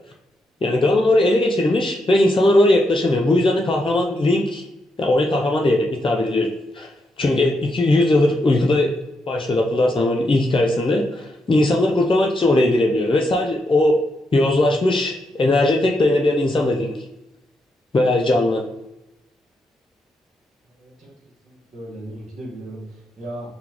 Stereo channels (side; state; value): both; normal; correlation 0.81